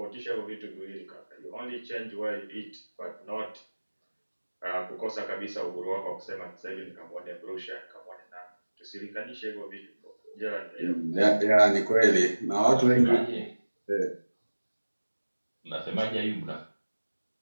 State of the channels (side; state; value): both; inverted; correlation -1.00